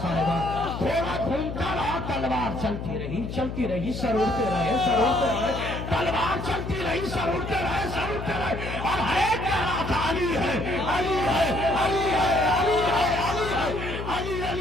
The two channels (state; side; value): noise; left; hum, 7 dB below the sound